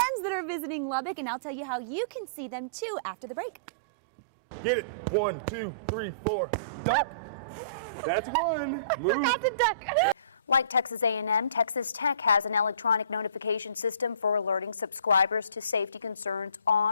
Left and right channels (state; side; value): inverted; both; correlation -0.47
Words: that are visiting Lubbock, and I'll tell you how you can see them too after the break. Get it. 1, 2, 3, 4. Duck. That's one. Move. Forgot to duck. Like Texas A&M, Texas Tech has an electronic notification system for alerting subscribers to safety concerns